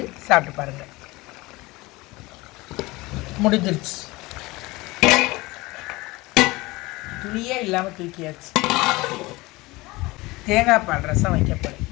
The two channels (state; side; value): quieter; right; 21.7 dB